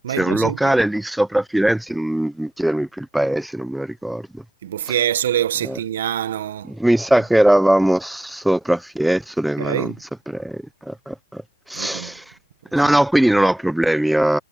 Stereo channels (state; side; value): normal; both; correlation 0.86